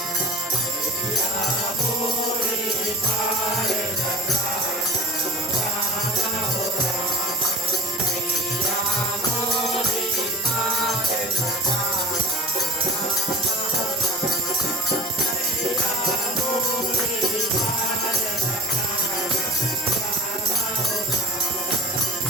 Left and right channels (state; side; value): normal; both; correlation 0.36